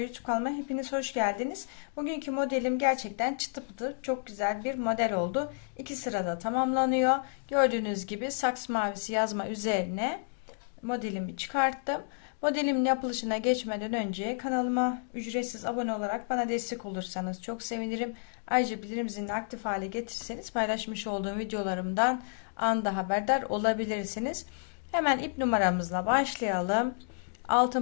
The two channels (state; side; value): silent; right; digital silence